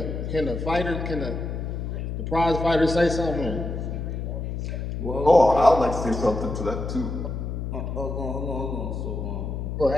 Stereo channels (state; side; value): noise; left; hum, 4 dB below the sound